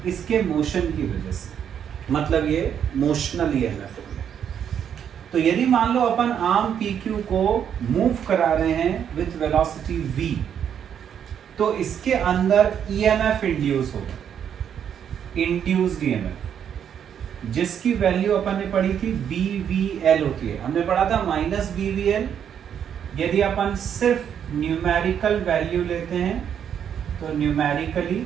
इसके मोशन की वजह से, मतलब ये मोशनल ईएमएफ हो गया। तो यदि मान लो अपन आर्म PQ को मूव करा रहे हैं विथ वेलोसिटी v, तो इसके अंदर ईएमएफ इंड्यूस होगा, इंड्यूस्ड ईएमएफ, जिसकी वैल्यू अपन ने पढ़ी थी BVL होती है। हमने पढ़ा था -BVL। यदि अपन सिर्फ न्यूमेरिकल वैल्यू लेते हैं तो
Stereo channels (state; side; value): quieter; left; 8.6 dB